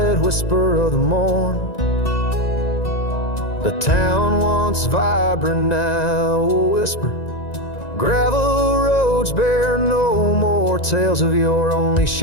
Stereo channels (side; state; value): right; late; 1.9 ms